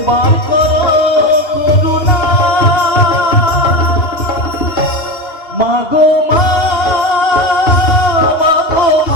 করো করুণা মাগো মা মাগো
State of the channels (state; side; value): late; right; 2.9 ms